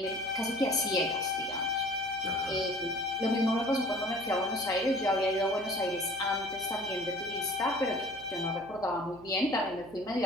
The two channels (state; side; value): noise; left; hum, 23 dB below the sound